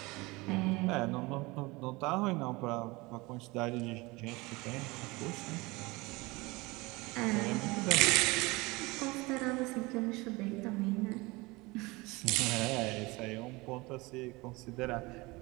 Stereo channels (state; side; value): quieter; left; 23.4 dB